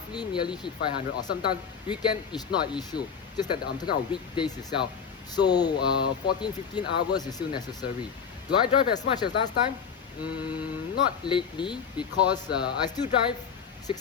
nearly hit 500, or sometimes weekend is not an issue, just that I'm talking about weekdays itself. So 14-15 hours is still necessary. Do I drive as much as last time? Not lately, because I still drive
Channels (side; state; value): right; quieter; 6.8 dB